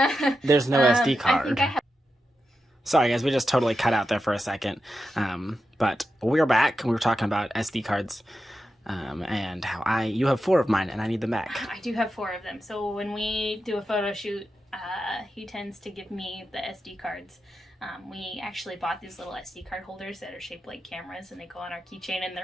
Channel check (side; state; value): both; normal; correlation 0.89